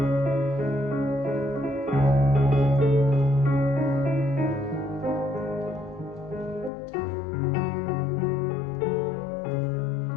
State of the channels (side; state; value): right; drops out; at 6.7 s